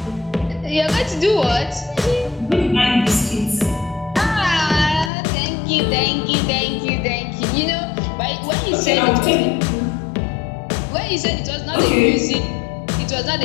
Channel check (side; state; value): right; drops out; at 5.1 s